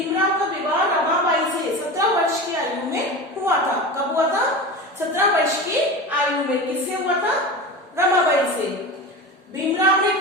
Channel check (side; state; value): both; normal; correlation 0.28